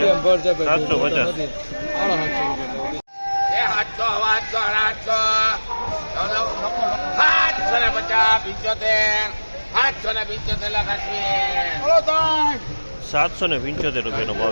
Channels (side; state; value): both; inverted; correlation -1.00